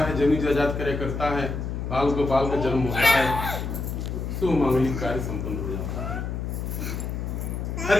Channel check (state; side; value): noise; left; hum, 4 dB below the sound